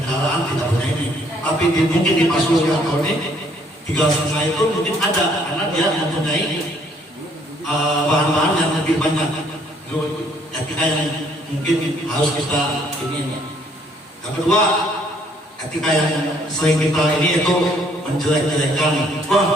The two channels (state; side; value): normal; both; correlation 0.64